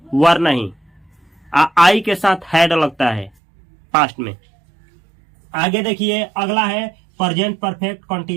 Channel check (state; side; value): drops out; left; at 3.3 s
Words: वर नहीं। आई के साथ हैड लगता है पास्ट में। आगे देखिए, अगला है present perfect